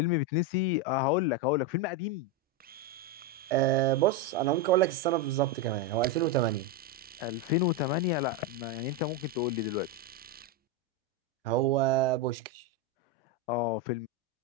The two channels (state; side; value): normal; both; correlation 0.08